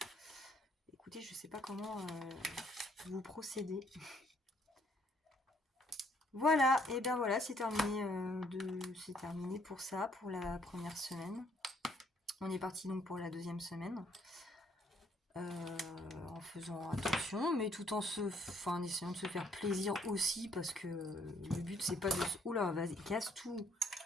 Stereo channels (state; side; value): normal; both; correlation 0.66